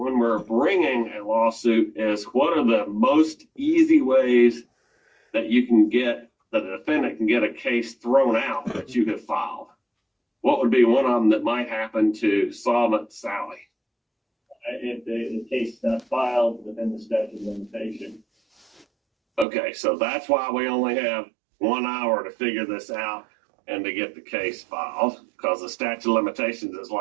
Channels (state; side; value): drops out; left; at 19.5 s